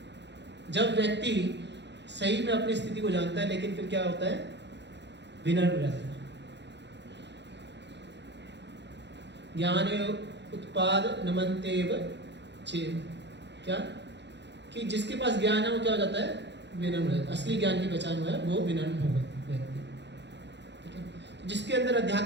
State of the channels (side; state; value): left; late; 0.51 ms